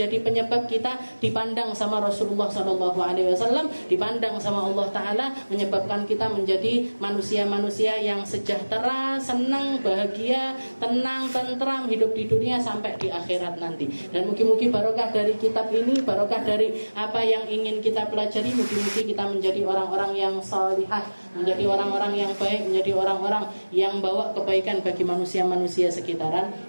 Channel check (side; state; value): both; inverted; correlation -1.00